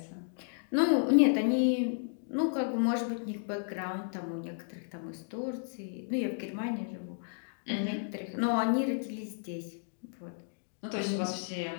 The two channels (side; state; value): right; silent; digital silence